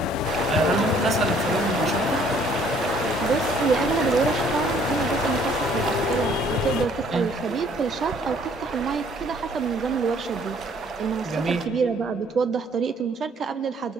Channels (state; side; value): normal; both; correlation 0.61